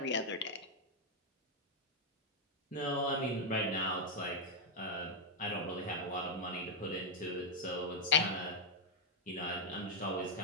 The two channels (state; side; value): normal; both; correlation -0.01